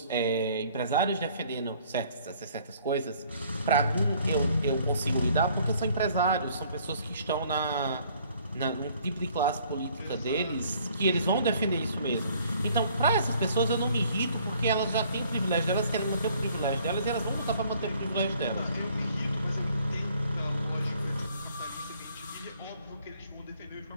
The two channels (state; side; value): inverted; both; correlation -0.60